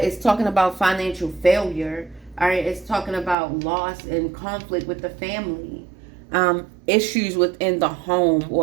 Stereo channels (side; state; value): left; drops out; at 3.4 s